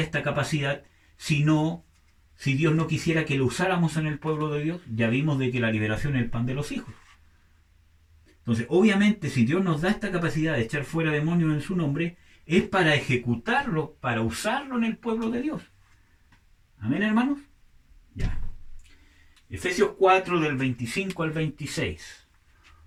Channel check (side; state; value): both; identical; correlation 1.00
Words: esta capacidad si Dios no quisiera que lo usáramos en el pueblo de Dios? Ya vimos de que la liberación es el pan de los hijos. Entonces, obviamente, si Dios nos da esta capacidad de echar fuera demonios en su nombre, es para ejecutarlo, para usarlo en el pueblo de Dios. ¿Amén, hermanos? Ya. Efesios 4 del 25 al 26.